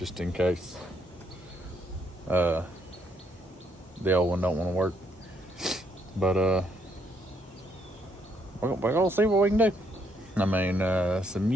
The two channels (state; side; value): normal; both; correlation 0.72